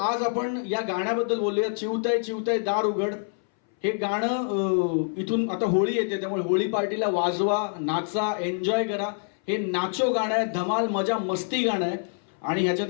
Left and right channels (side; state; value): right; silent; 61 dB below the other